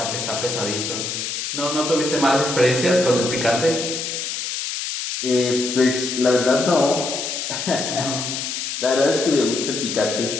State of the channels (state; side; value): noise; left; hiss, 4 dB below the sound